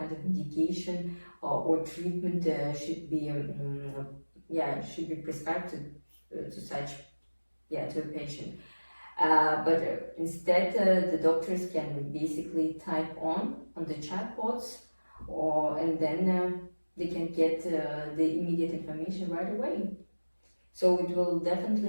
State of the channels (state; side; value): inverted; both; correlation -1.00